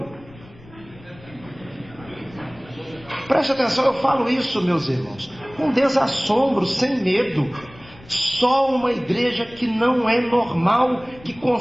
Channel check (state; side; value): noise; left; rumble, 22 dB below the sound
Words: Preste atenção, eu falo isso, meus irmãos, com desassombro, sem medo. Só uma igreja que não é normal, que